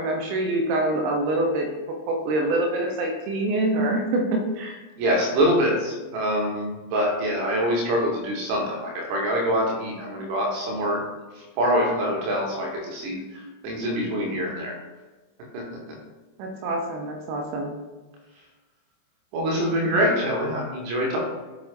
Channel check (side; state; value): left; late; 26 ms